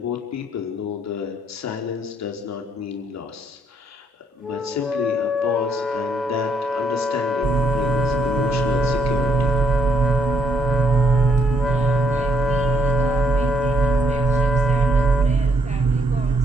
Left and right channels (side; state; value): both; normal; correlation 0.72